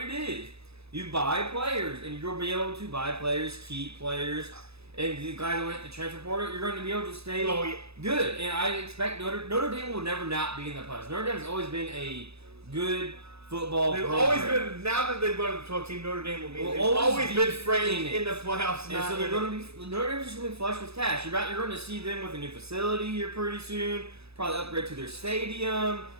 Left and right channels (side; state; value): left; late; 0.79 ms